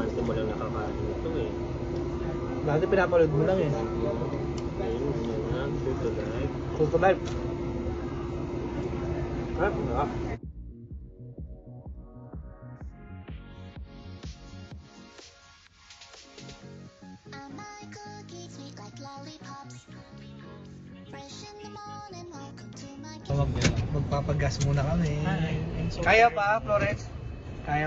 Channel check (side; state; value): both; identical; correlation 1.00